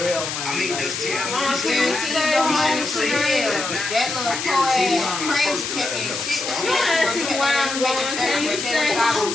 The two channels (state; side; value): noise; left; hiss, 5 dB below the sound